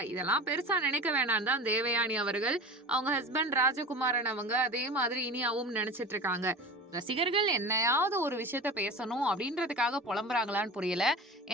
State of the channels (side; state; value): both; normal; correlation 0.33